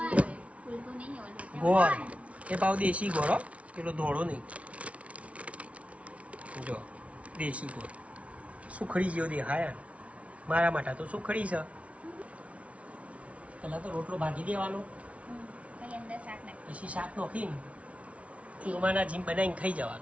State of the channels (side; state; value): left; late; 0.064 ms